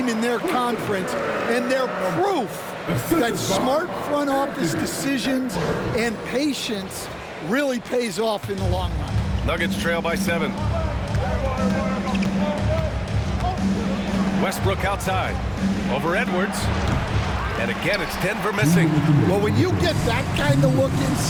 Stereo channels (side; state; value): both; identical; correlation 1.00